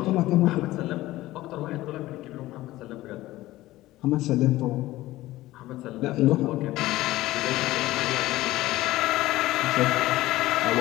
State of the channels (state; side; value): quieter; right; 16.9 dB